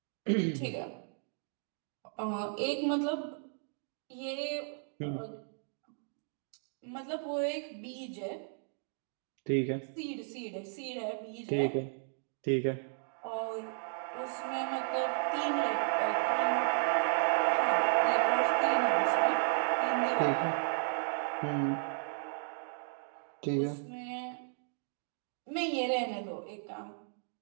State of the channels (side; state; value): left; silent; 55 dB below the other